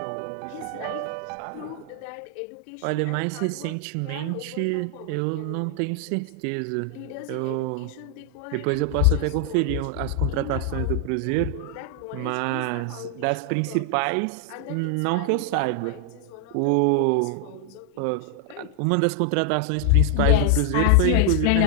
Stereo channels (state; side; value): different; both; correlation 0.00